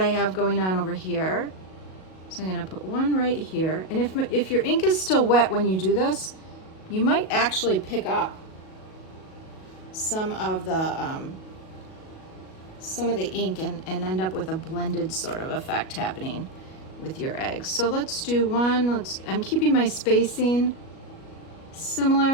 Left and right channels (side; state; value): right; late; 37 ms